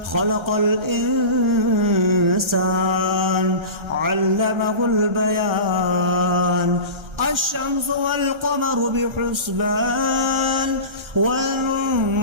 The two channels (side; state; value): left; late; 1.3 ms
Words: خلق الإنسان علمه البيان. الشمس والقمر بحسبان